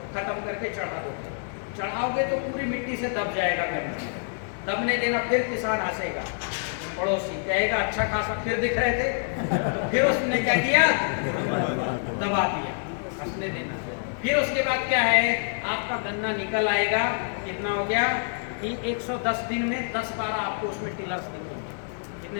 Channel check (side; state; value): right; silent; digital silence